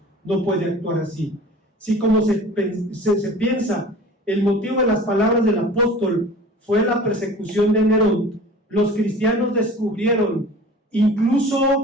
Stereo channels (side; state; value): both; normal; correlation 0.42